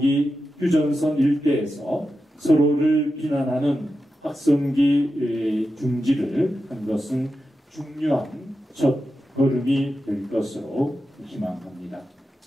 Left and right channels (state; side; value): normal; both; correlation 0.90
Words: 휴전선 일대에서 서로를 비난하는 확성기 중지를 한 것은 중요한 첫 걸음이 될 것으로 희망합니다.